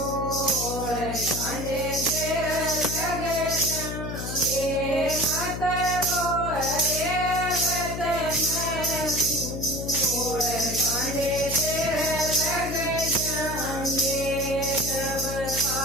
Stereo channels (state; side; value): noise; left; hum, 6 dB below the sound